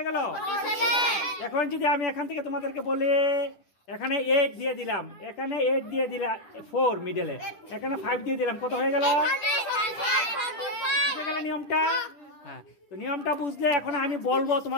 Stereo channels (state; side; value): late; right; 10 ms